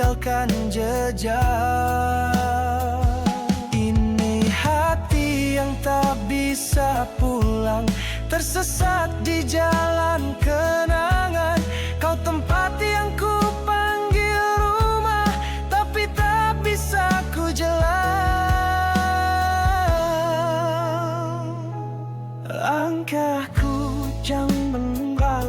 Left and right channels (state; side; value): identical; both; correlation 1.00